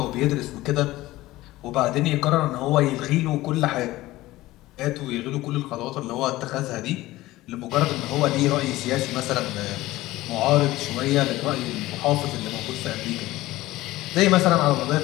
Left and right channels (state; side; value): quieter; right; 17.5 dB